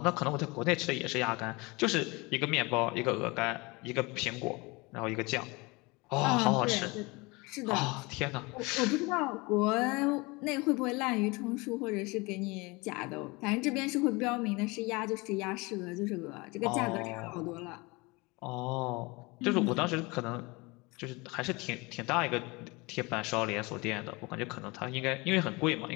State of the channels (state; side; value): quieter; right; 25.4 dB